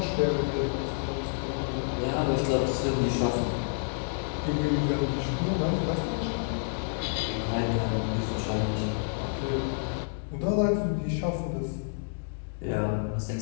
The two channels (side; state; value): right; silent; digital silence